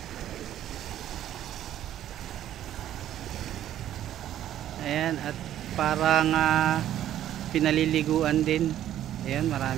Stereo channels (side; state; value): left; quieter; 11.8 dB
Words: Ayan, at parang pinaliliguan din. Ayan,